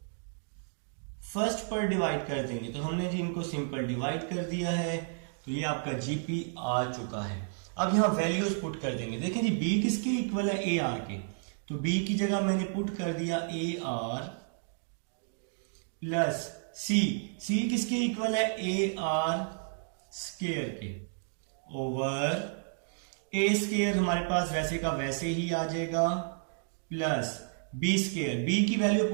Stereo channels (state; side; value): silent; left; digital silence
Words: फर्स्ट पर डिवाइड कर देंगे, तो हमने जी इनको सिंपल डिवाइड कर दिया है, तो ये आपका जीपी आ चुका है। अब यहां वैल्यूज पुट कर देंगे। देखें जी बी किसके इक्वल है, ए आर के, तो बी की जगह मैंने पुट कर दिया ए आर प्लस सी, सी किसके इक्वल है, ए आर स्क्वायर के, ओवर ए स्क्वायर हमारे पास वैसे का वैसे ही आ जाएगा, प्लस बी स्क्वायर, बी की वैल्यू